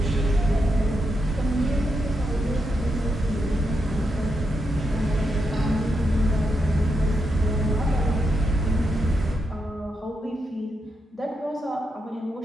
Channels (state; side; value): normal; both; correlation 0.84